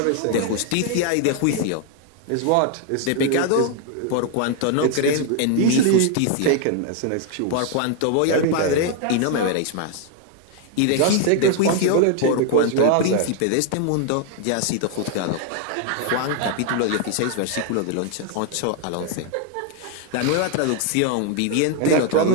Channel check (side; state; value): both; different; correlation 0.00